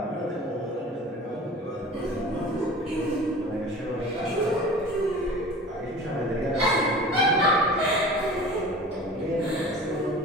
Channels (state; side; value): normal; both; correlation 0.40